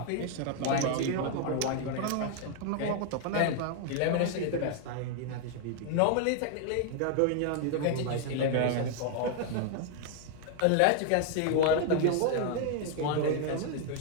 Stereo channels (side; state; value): both; different; correlation 0.00